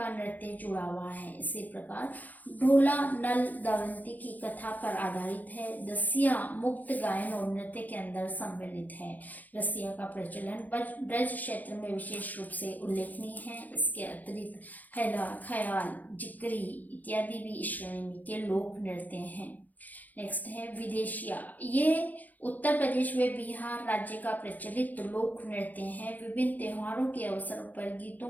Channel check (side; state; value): right; late; 0.082 ms